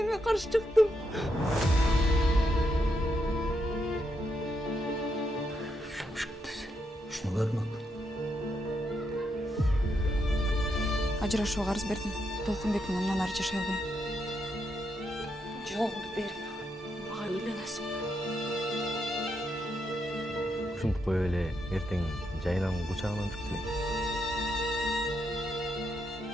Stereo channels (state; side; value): normal; both; correlation 0.80